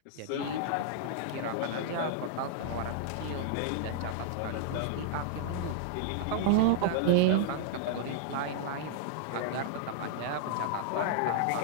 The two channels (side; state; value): both; different; correlation -0.01